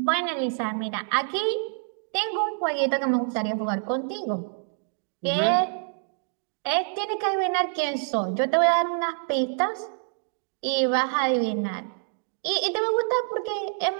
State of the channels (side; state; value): left; silent; digital silence